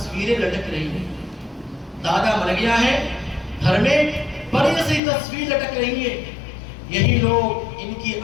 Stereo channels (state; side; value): drops out; right; at 5.0 s